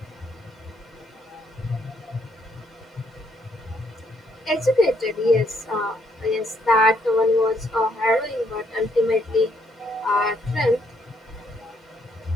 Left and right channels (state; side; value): normal; both; correlation 0.71